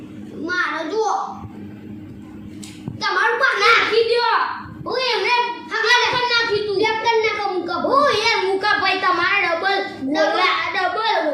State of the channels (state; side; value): identical; both; correlation 1.00